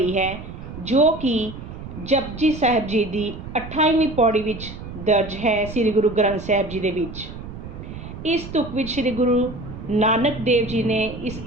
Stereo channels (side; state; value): right; noise; rumble, 11 dB below the sound